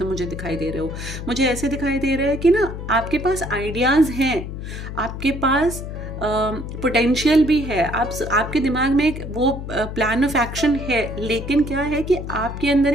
मुझे दिखाई दे रहे हो। मुझे ऐसे दिखाई दे रहा है कि ना आपके पास आइडियाज हैं, आपके पास पोटेंशियल भी है, आपके दिमाग में एक वो प्लान ऑफ एक्शन है, लेकिन क्या है कि आपके अंदर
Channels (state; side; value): noise; left; hum, 8 dB below the sound